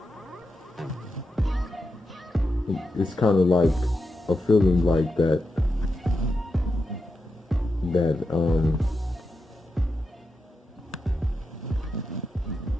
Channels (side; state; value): both; normal; correlation 0.87